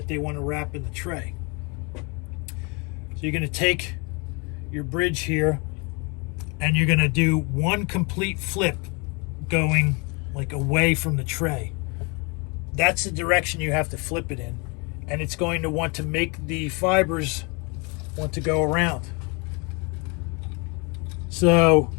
they want to wrap in the tray. So you're going to take your bridge here and you're going to do one complete flip going like away from the tray. That's the direction you have to flip it in, and it's going to want to make the fibers want to go around. So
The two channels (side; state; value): right; quieter; 31.1 dB